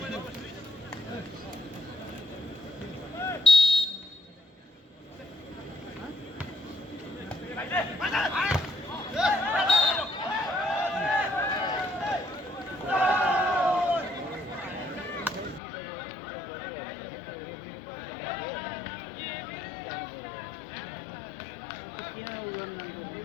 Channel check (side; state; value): right; drops out; at 15.6 s